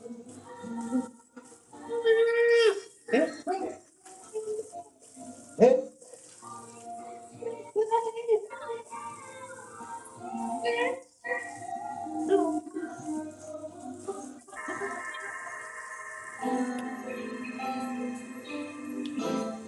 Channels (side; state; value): both; identical; correlation 1.00